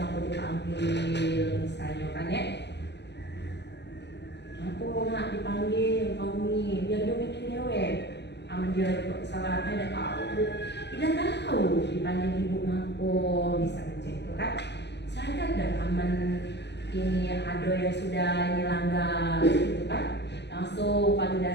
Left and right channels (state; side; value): late; right; 0.50 ms